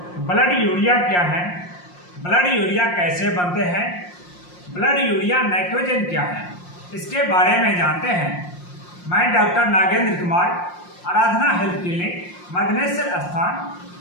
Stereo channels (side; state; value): right; late; 5.6 ms